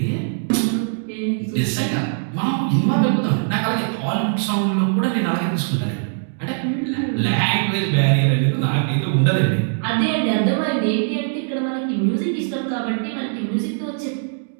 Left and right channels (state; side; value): silent; left; digital silence